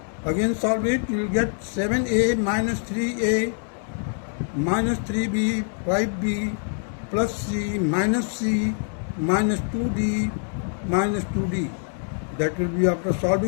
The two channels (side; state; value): right; silent; 56 dB below the other